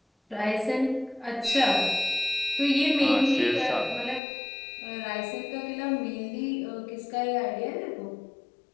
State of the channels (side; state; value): right; drops out; at 4.2 s